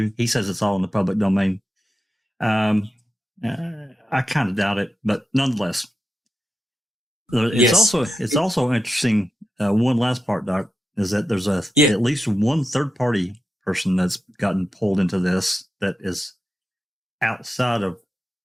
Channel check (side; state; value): both; normal; correlation 0.90